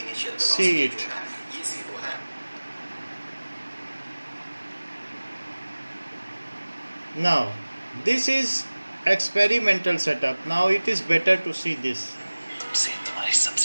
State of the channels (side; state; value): both; inverted; correlation -1.00